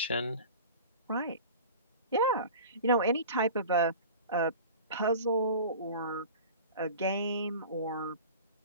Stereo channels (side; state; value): both; inverted; correlation -0.38